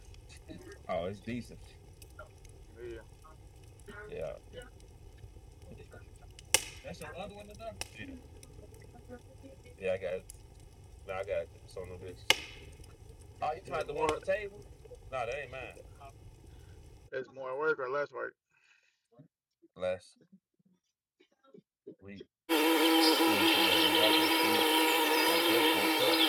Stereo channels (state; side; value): identical; both; correlation 1.00